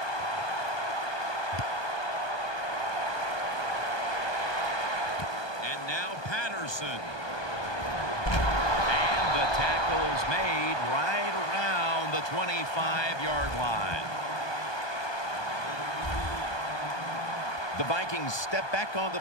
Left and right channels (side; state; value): right; late; 1.2 ms